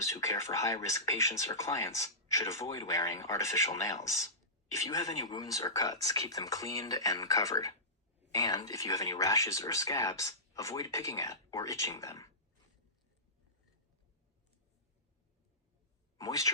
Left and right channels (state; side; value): normal; both; correlation -0.18